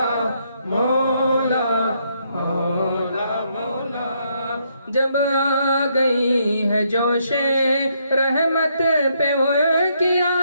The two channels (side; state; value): both; inverted; correlation -0.74